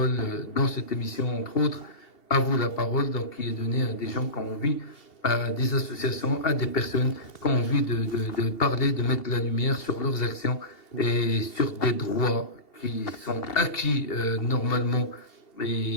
dans cette émission, entre autres. À vous la parole, donc qui est donnée à des gens qui ont envie, à des associations, à des personnes qui ont envie de parler, de mettre de la lumière sur leurs actions et sur des droits qui sont acquis normalement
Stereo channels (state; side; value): late; right; 2.7 ms